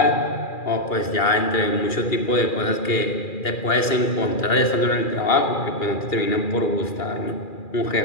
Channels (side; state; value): right; late; 2.4 ms